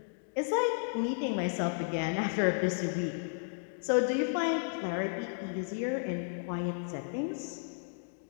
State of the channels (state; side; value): silent; right; digital silence